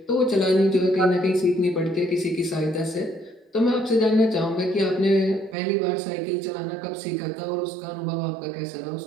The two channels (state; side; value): drops out; left; at 5.6 s